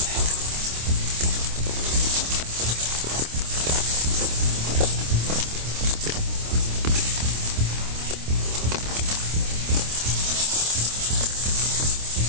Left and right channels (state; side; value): late; left; 26 ms